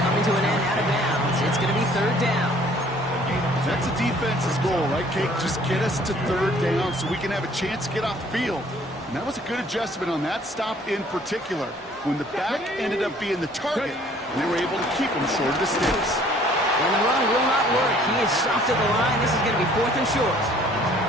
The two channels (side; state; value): both; normal; correlation 0.57